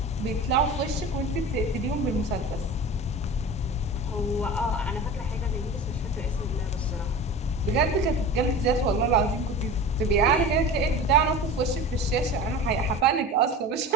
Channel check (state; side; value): normal; both; correlation 0.33